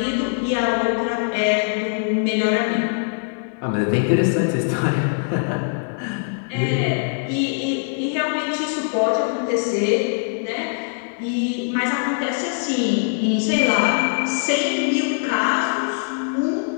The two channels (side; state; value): right; silent; digital silence